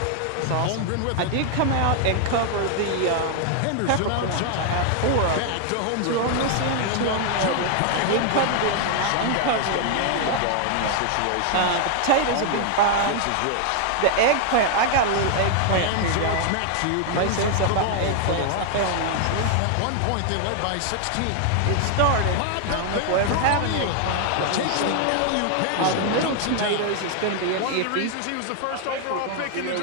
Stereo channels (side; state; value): both; different; correlation 0.00